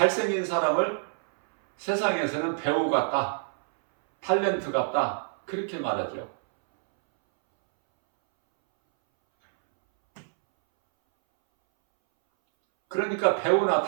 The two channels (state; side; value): silent; left; 61 dB below the other